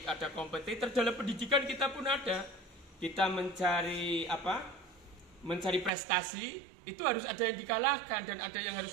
ada kompetitor dalam pendidikan, kita pun ada. Kita mencari mencari prestasi, itu harus ada yang dikalahkan dan ada yang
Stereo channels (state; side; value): drops out; left; at 5.9 s